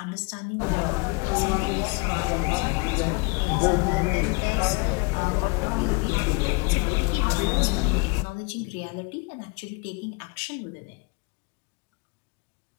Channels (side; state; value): right; quieter; 30.6 dB